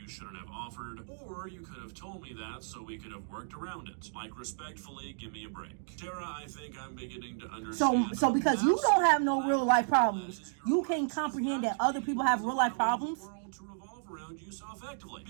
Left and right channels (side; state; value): left; silent; digital silence